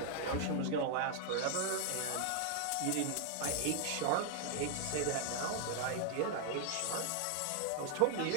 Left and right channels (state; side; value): different; both; correlation 0.00